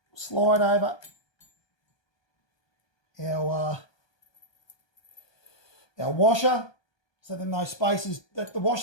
slide over our washer, so then those spaces, the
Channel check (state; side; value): late; right; 1.2 ms